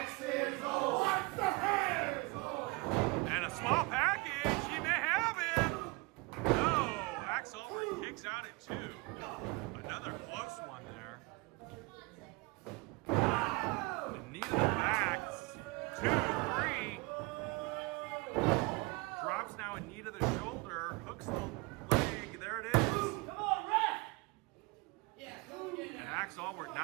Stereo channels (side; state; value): left; quieter; 25.7 dB